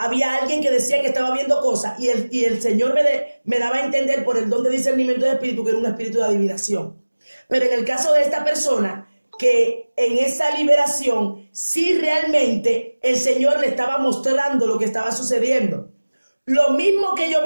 alguien que decía que estaba viendo cosas y el Señor me daba a entender por el don de discernimiento de espíritu que era un espíritu de adivinación. Pero en el caso de esta persona, que en esa liberación sí realmente el Señor le estaba mostrando lo que estaba sucediendo. Lo mismo que yo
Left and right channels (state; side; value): inverted; both; correlation -1.00